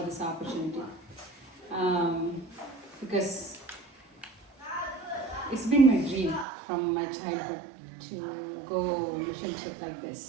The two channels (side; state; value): left; drops out; at 6.5 s